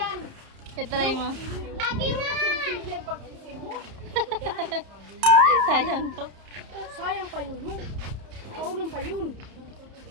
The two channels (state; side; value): late; left; 31 ms